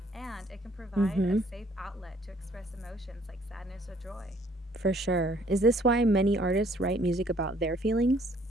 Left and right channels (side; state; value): both; normal; correlation 0.61